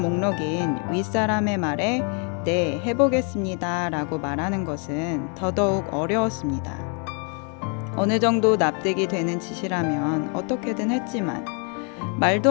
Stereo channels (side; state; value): right; quieter; 38.8 dB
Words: 목록인 윗사람의 말에 네, 해보겠습니다 라고 말하는 것은 더더욱 어려웠습니다. 어느 정도 납득이 되는 짓이라면 어떻게든 했지만 말도